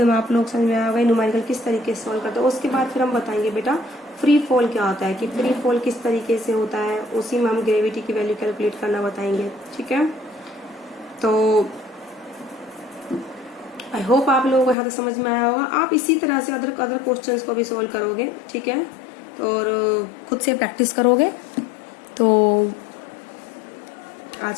में आप लोग समझ में आया होगा न्यूमेरिकल किस तरीके से सॉल्व करते हैं। उसके बाद फिर हम बताएंगे बेटा फ्री फॉल क्या होता है, कि फ्री फॉल किस तरीके से होता है, उसी में हम ग्रेविटी की वैल्यू कैलकुलेट करना बताएंगे। ठीक है, तो आई होप आप लोगों को यहाँ तक समझ में आया होगा। आप इसी तरह से अदर क्वेश्चंस को भी सॉल्व करोगे। ठीक है, और खुद से प्रैक्टिस करोगे। तो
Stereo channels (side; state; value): right; drops out; at 14.8 s